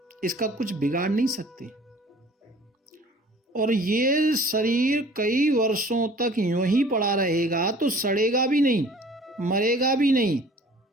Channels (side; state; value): both; normal; correlation 0.49